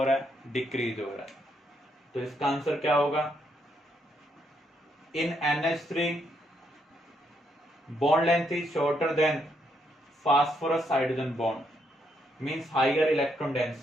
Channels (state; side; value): normal; both; correlation 0.76